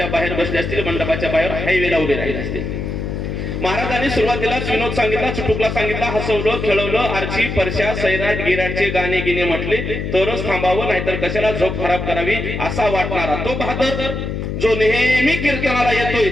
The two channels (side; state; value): left; noise; hum, 4 dB below the sound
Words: बाहेर बसले असतील, मंडपाच्या बाहेर हायवेला उभे राहिले असतील, महाराजांनी सुरुवातीलाच विनोद सांगितला, चुटुकला सांगितला, हसवलं, खेळवलं, आरची परशा सैराट गिराटचे गाणे गिने म्हटले तरच थांबावं, नाहीतर कशाला झोप खराब करावी असा वाटणारा तो बहादर जो नेहमी कीर्तनाला येतोय